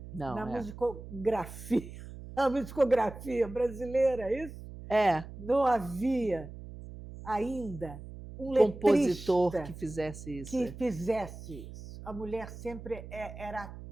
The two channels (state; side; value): noise; right; hum, 13 dB below the sound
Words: na musicografia, a musicografia brasileira, isso? Não havia ainda um compositor que fizesse isso. Fizesse isso. A mulher sempre era